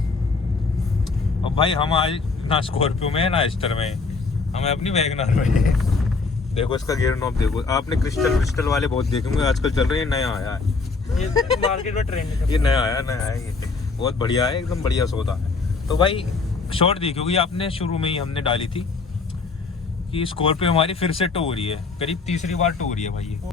अब भाई हम आज ना स्कॉर्पियो में है ना एस्टर में, हमें अपनी वैगनआर में है। देखो इसका गियर नॉब देखो। आपने क्रिस्टल वाले बहुत देखे होंगे, आजकल चल रहे हैं, नया आया है ये मार्केट में ट्रेंड है। ये नया आया ये बहुत बढ़िया है, एकदम बढ़िया सौदा है। तो भाई शॉर्ट दी क्योंकि आपने शुरू में ही हमने डाली थी कि स्कॉर्पियो हमारी फिर से टो हो रही है, करीब तीसरी बार टो हो रही है भाई। ये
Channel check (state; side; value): quieter; right; 4.3 dB